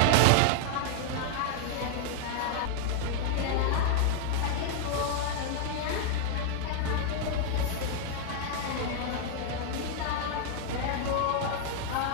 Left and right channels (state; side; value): different; both; correlation 0.00